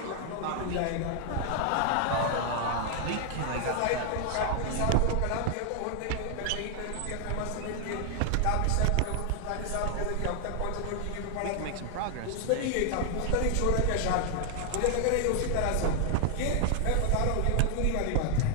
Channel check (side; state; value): both; different; correlation 0.00